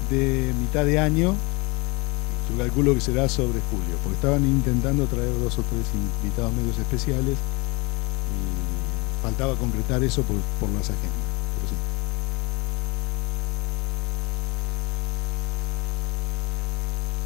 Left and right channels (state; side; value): quieter; right; 26.8 dB